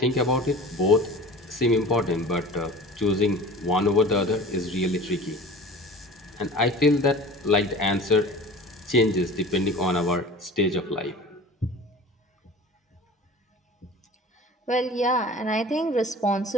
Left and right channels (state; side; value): normal; both; correlation 0.40